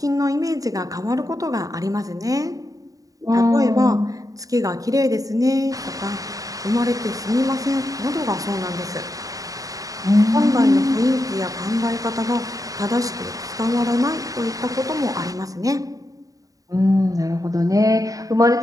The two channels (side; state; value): left; late; 0.17 ms